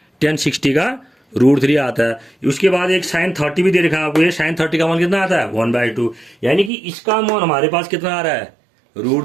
tan 60 का √3 आता है। उसके बाद एक sin 30 भी दे रखा है आपको, ये sin 30 का मान कितना आता है 1/2, यानी कि इसका मान हमारे पास कितना आ रहा है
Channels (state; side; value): drops out; left; at 6.7 s